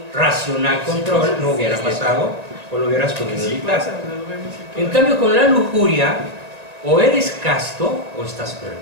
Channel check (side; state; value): left; late; 1.9 ms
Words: racional control, no hubiera pasado, o lo hubieras podido evitar. En cambio, con la lujuria, o eres casto o estás